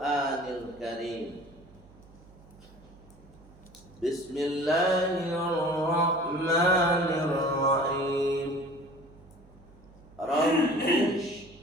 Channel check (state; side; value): noise; right; hum, 24 dB below the sound